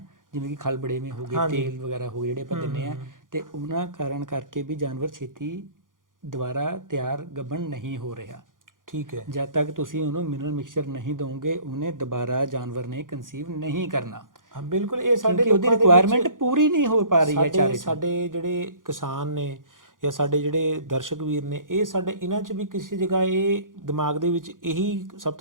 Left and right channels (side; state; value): left; late; 0.89 ms